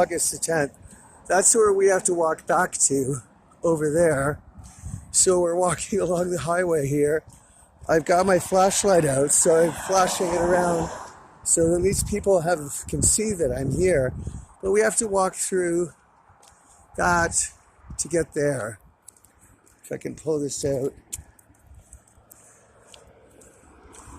the 10th. That's where we have to walk back to, over there. So we're walking along the highway here. I've got my flashlight out, so I'm flashing it around so at least people can see that I'm here. But we have to walk through that to get there. If I can pull this out.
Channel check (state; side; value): identical; both; correlation 1.00